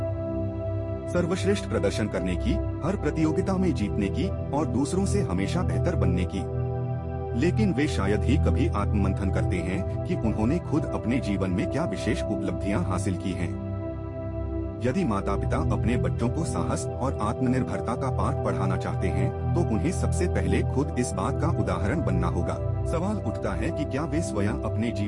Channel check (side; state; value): both; identical; correlation 1.00